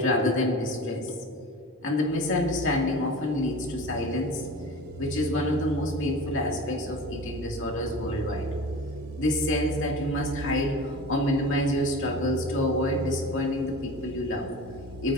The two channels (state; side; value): normal; both; correlation 0.35